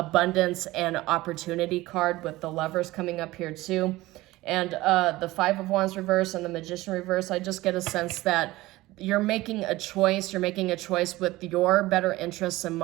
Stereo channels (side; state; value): left; quieter; 18.5 dB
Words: and opportunity card, with the Lovers coming up here too. And the Five of Wands reverse and the Magician reverse, I just get a sense that you're making a choice. You're making a choice with your better interests in